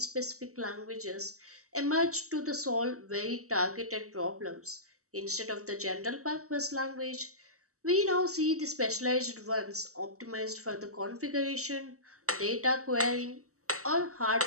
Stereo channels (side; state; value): left; late; 0.65 ms